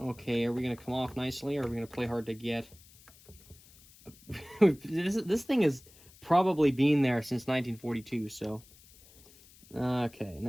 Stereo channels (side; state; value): left; noise; hiss, 25 dB below the sound